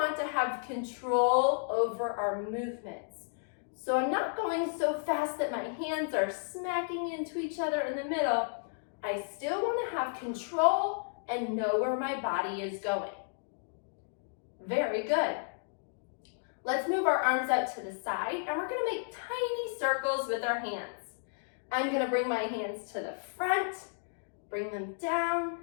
to have control over our movements. So I'm not going so fast that my hands are smacking into each other in the middle. I still want to have control and know where my body is going. Very good. Let's move our arms out to the side, and we're going to make tiny circles with our hands. I'm going to bring my hands to the front, bring them down,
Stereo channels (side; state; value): right; silent; digital silence